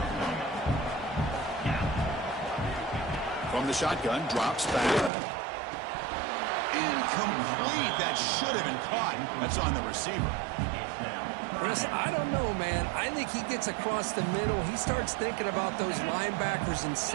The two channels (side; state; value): left; drops out; at 5.1 s